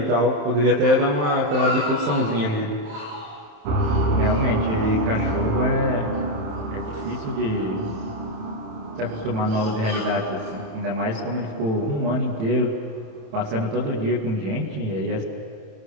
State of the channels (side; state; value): left; late; 27 ms